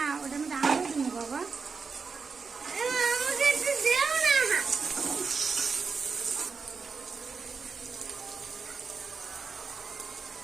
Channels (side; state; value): left; quieter; 5.1 dB